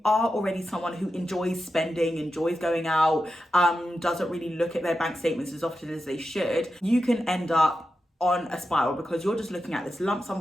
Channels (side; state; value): both; normal; correlation 0.90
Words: are already someone who enjoys spending, enjoys going out, doesn't really look at their bank statements as often as they should, you can end up on a spiral because you're just looking at this lump sum